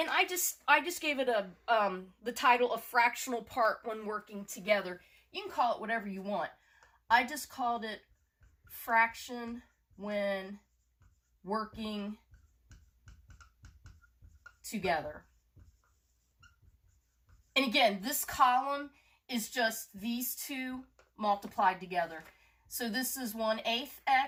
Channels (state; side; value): identical; both; correlation 1.00